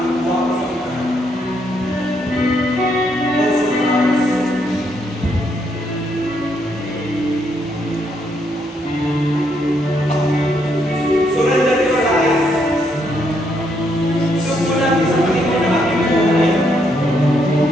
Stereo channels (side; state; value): both; normal; correlation 0.75